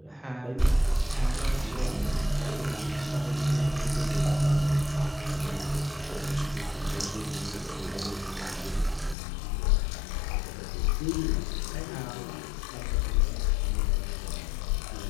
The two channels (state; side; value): drops out; right; at 9.2 s